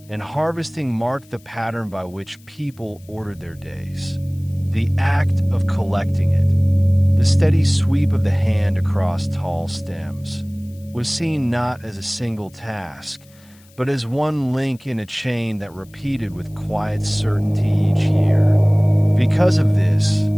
and harvesting marked the pattern by which people ordered their days. The act of collecting it, the steady sweep of the hand across tall stems, was seen not as a single task, but as one link in a chain that repeated with quiet certainty each year. Because of this,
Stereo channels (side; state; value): left; noise; hiss, 29 dB below the sound